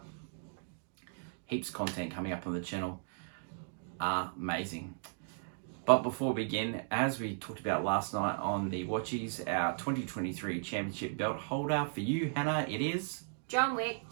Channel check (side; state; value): left; silent; digital silence